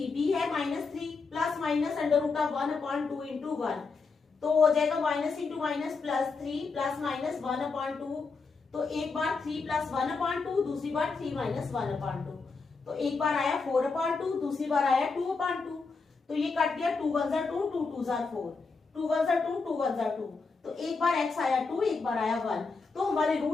है -3 plus minus under root of 1 upon 2 into 1, तो हो जाएगा minus into minus plus 3 plus minus 1 upon 2, तो एक बार 3 प्लस 1 अपॉन 2, दूसरी बार 3 माइनस 1 अपॉन 2, तो एक बार आया 4 अपॉन 2, दूसरी बार आया 2 अपॉन 2, तो ये कट गया 2 1 2, 2 2 4, 2 1 2, 2 1 2, तो एक बार x आया 2, एक बार आया 1, तो हमारे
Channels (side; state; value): right; quieter; 4.4 dB